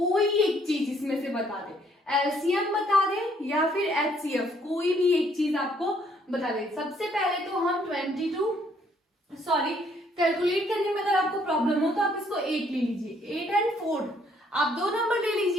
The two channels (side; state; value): both; normal; correlation 0.66